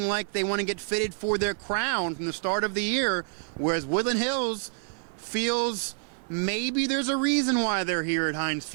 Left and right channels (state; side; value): silent; left; 60 dB below the other